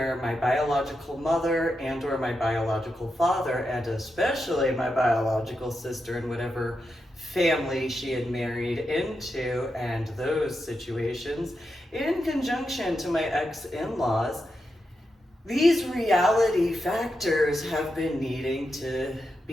my biological mother and or my biological father, and especially my biological sister and whatever family she had married into, and those situations, in conjunction to my ex-in-laws, these reality factors have been needing to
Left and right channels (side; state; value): both; normal; correlation 0.87